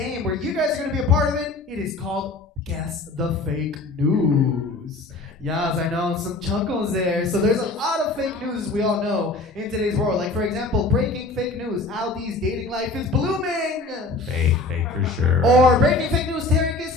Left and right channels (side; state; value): right; quieter; 3.2 dB